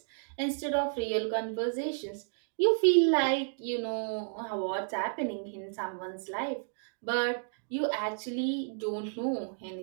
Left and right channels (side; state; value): left; silent; digital silence